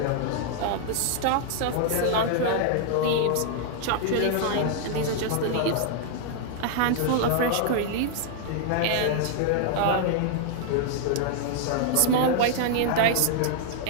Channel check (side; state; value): both; different; correlation -0.01